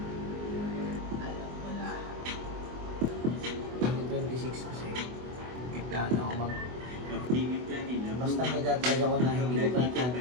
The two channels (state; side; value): late; left; 24 ms